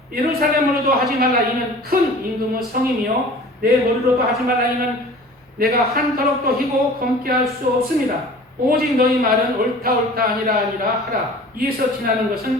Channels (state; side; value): normal; both; correlation 0.43